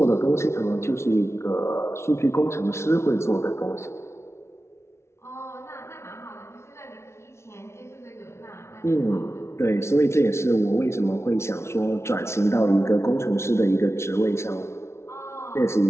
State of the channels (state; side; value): late; right; 0.13 ms